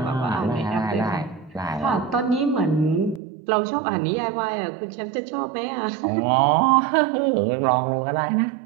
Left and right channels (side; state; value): left; drops out; at 3.2 s